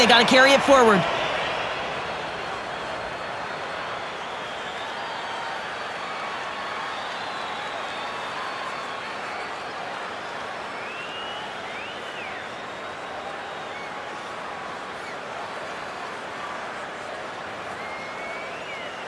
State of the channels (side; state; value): both; identical; correlation 1.00